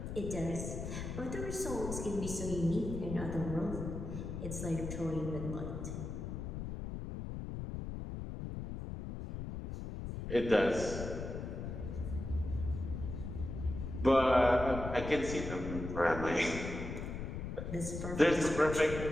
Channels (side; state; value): left; noise; rumble, 6 dB below the sound